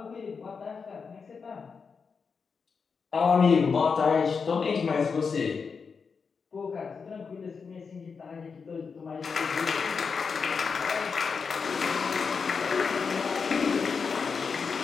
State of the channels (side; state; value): right; quieter; 5.5 dB